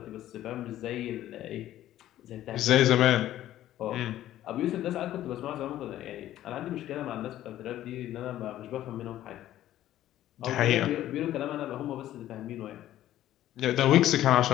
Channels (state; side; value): quieter; right; 13.2 dB